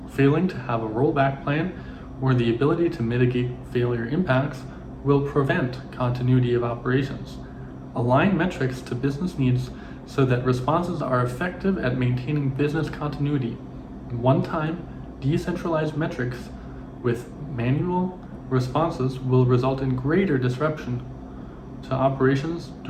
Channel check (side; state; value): both; identical; correlation 1.00